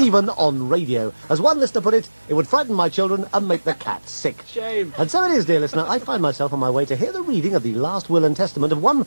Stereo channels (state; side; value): inverted; both; correlation -1.00